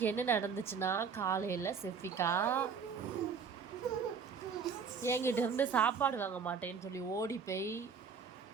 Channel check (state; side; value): quieter; left; 6.0 dB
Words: என்ன நடந்துச்சுன்னா, காலையில் செஃபிகா என்கிட்ட இருந்து சாப்பாடு வாங்க மாட்டேன்னு சொல்லி ஓடி போய்